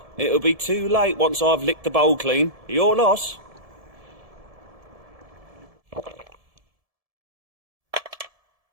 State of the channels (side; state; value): left; late; 1.7 ms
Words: it'll be too late once I've licked the bowl clean. Your loss.